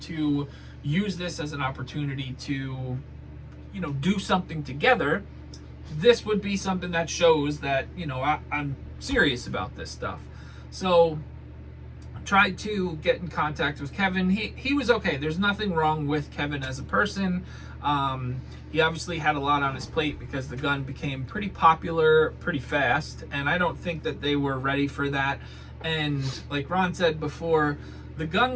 to use this as an opportunity to, you know, do something together, this would be something that shows that, you know, I'm serious about this stuff. So I tried to get in contact with Kevin. He was okay. There's nothing wrong with Kevin as a person. He obviously had a lot on his plate because the gun became pretty popular pretty fast, and I don't think that they were ready for that. And like Ron said before, the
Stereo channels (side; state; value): both; identical; correlation 1.00